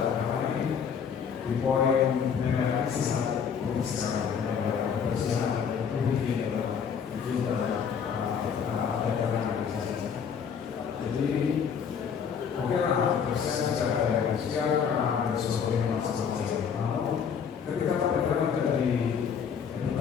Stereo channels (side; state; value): right; quieter; 7.1 dB